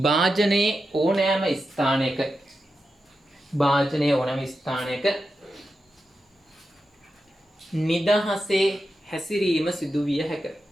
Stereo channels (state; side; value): normal; both; correlation 0.89